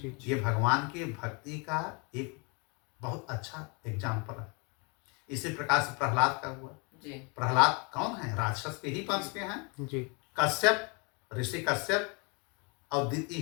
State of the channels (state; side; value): quieter; right; 32.5 dB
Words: ये भगवान की भक्ति का एक बहुत अच्छा एग्जाम्पल है। इसी प्रकार से प्रहलाद का हुआ। प्रहलाद कौन है, राक्षस के ही वंश के हैं। कश्यप, ऋषि कश्यप और